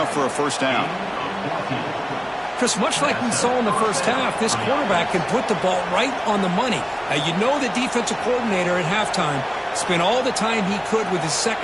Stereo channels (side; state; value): both; identical; correlation 1.00